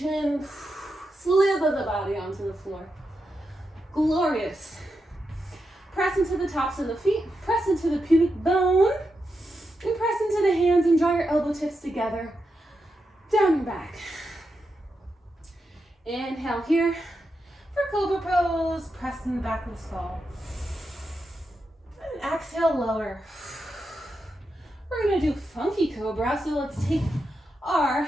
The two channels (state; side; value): normal; both; correlation 0.86